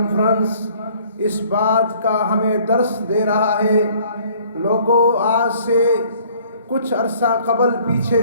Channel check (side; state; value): both; inverted; correlation -0.57